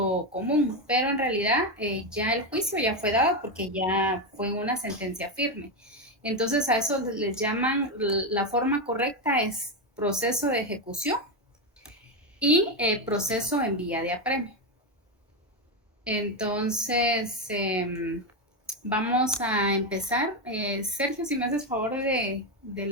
común, pero en realidad ya el juicio ya fue dado porque ya fue una sentencia firme. Entonces a eso les llaman, la forma correcta es proceso de ejecución y proceso en vía de apremio. Entonces, vamos a empezar. Sergio, si me haces favor de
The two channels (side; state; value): both; normal; correlation 0.10